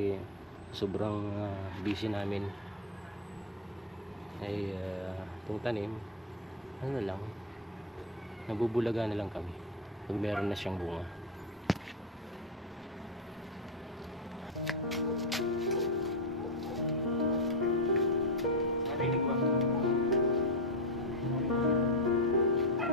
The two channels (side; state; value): both; normal; correlation 0.09